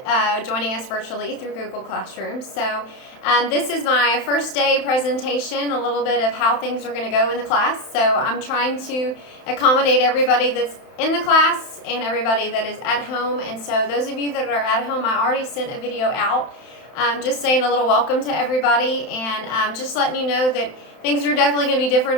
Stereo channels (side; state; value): right; late; 31 ms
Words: joining us virtually through Google Classroom. So this is my first day presentation, a little bit of how things are going to go in the class. So I'm trying to accommodate everybody that's in the class and everybody that is at home. And so those of you that are at home, I already sent a video out just saying a little welcome to everybody and just letting you know that things are definitely going to be different